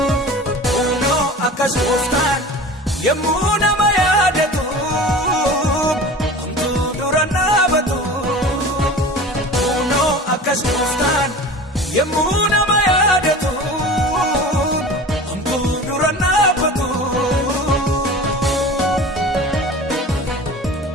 kunoo akkas gooftaan yemmuu nama yaadatu homtuu dura dhaabatu kunoo akkas gooftaan yemmuu nama yaadatu homtuu dura dhaabatu.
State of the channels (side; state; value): both; normal; correlation 0.37